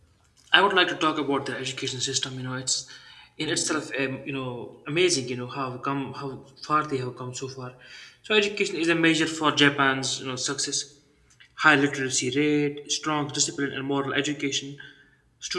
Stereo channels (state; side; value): identical; both; correlation 1.00